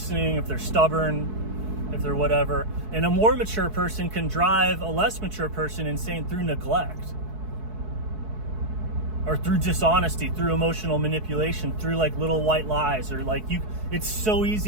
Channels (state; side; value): late; left; 4.6 ms